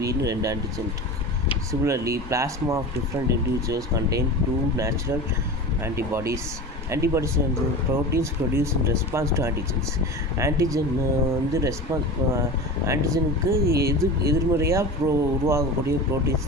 2 antigen. Similarly, plasma of different individuals contain 2 natural antibodies. Antibodies and proteins produced in response to antigens. Antigen வந்து ஆன்டிஜனுக்கு எதிர்மறையாக உருவாகக்கூடிய ப்ரோட்டீன்ஸ்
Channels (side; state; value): both; normal; correlation 0.31